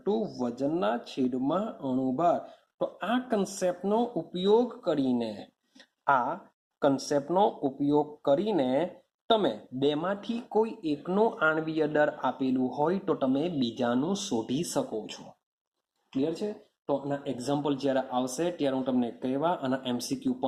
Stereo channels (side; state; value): both; identical; correlation 1.00